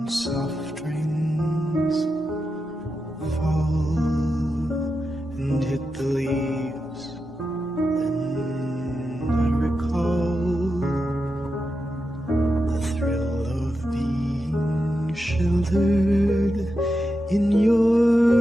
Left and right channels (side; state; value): both; normal; correlation 0.88